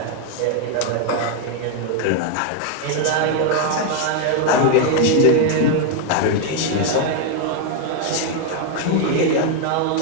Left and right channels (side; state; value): both; different; correlation 0.01